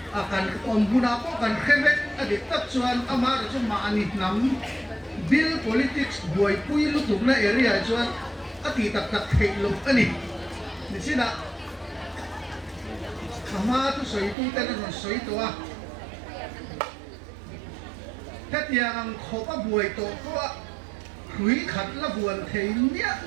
akan ombuna ko kan khebek adik tak chuan amar chu ma ani nam bill politics boy pui lu tum na area chuan ati tak thei lu ani ni sina ama tu soi tu tên là soi tua thế thì ang khó có buổi tổ có hủy khát là buồn thấy nhẹ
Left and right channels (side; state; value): left; drops out; at 14.4 s